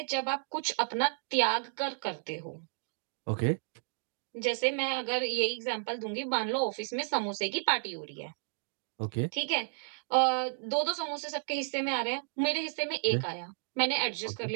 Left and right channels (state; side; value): silent; left; digital silence